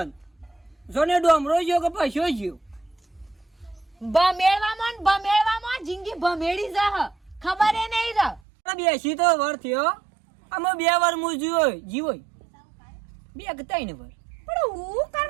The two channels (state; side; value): drops out; left; at 8.4 s